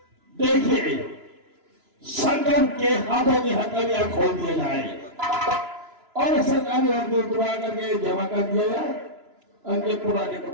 देखिए, संगम के हाथों की हथकड़ियां खोल दिया जाए और सरकारी वर्दी उतरवा करके जमा कर दिया जाए, उनके पुराने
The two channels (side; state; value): left; late; 3.0 ms